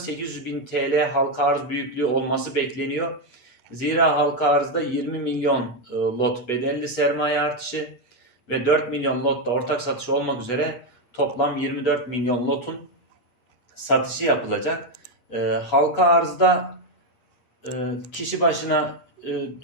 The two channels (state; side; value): late; right; 8.3 ms